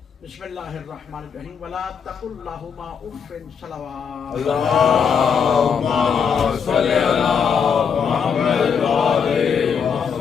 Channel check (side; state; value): right; quieter; 6.8 dB